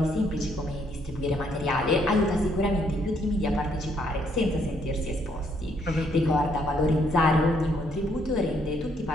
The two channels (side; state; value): both; normal; correlation 0.70